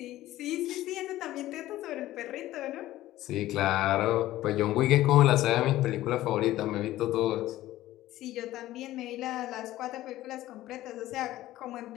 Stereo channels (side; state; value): right; quieter; 15.2 dB